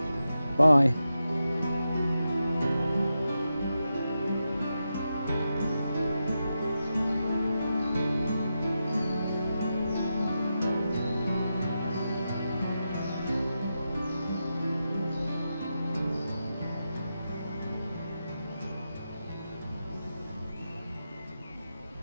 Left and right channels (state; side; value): inverted; both; correlation -0.88